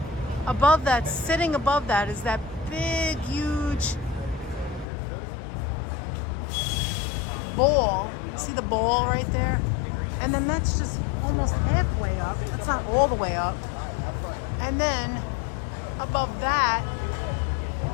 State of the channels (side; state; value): right; drops out; at 4.9 s